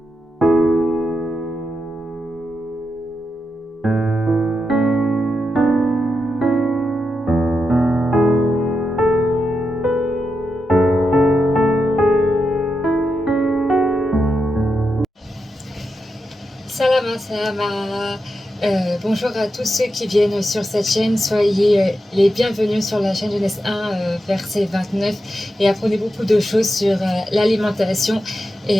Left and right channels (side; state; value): both; normal; correlation 0.87